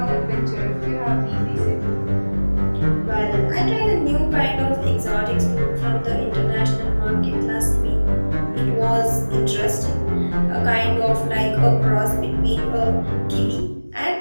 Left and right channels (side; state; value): both; inverted; correlation -1.00